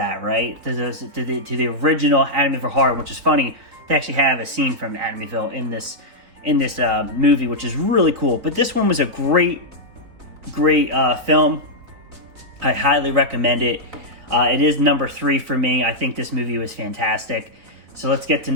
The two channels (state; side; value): late; left; 4.2 ms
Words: right? To the original Amityville Horror, which is funny. They actually have a scene from Amityville in this movie, which is really cool. But this one was a great film. I highly recommend it. It is number 3 for me. I think this movie was fantastic. So let's get to